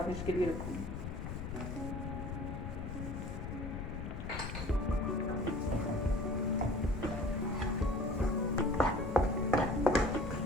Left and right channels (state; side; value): noise; left; rumble, 5 dB below the sound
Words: के लिए रखूँगी।